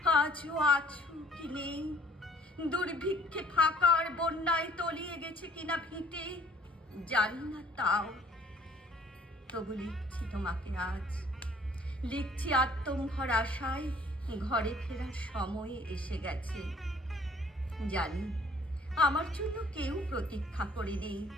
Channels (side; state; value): both; normal; correlation 0.56